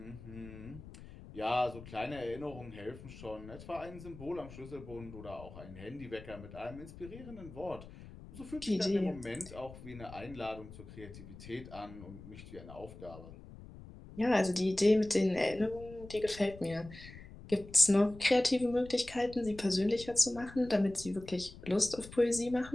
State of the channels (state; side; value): noise; left; rumble, 16 dB below the sound